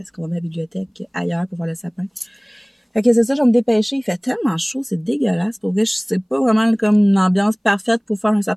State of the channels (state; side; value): identical; both; correlation 1.00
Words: qu'on va mettre la bibliothèque ailleurs pour voir le sapin. Fait que c'est ça, je vais me dépêcher. Il fait tellement chaud, c'est dégueulasse. Pour vrai, c'est pas vraiment comme une ambiance parfaite pour faire un